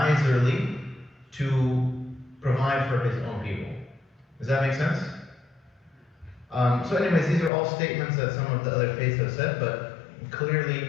to provide for His own people. Does that make sense? So anyways, these are all statements that some of the other faiths have said, but clearly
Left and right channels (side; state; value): right; drops out; at 7.5 s